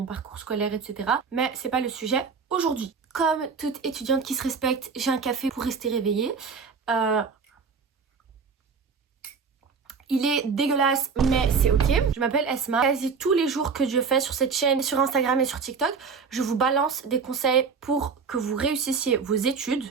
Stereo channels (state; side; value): quieter; left; 5.5 dB